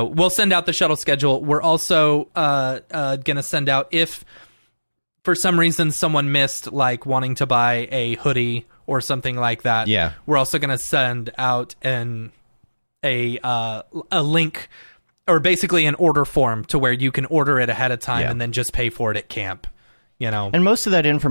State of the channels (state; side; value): inverted; both; correlation -1.00